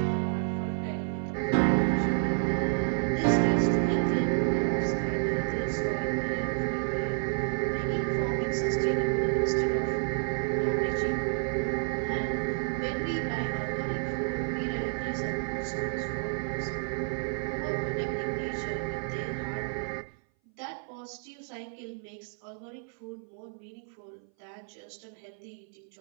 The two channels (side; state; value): left; silent; 58 dB below the other